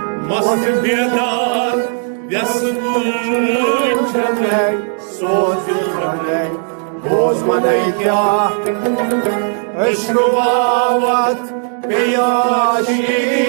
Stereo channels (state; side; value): silent; left; 58 dB below the other